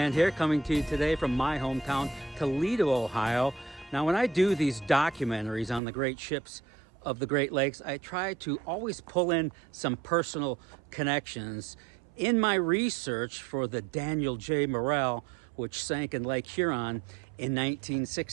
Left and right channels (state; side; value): drops out; left; at 5.8 s